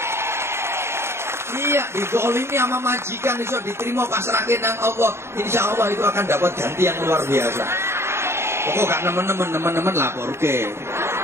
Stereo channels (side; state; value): left; late; 0.12 ms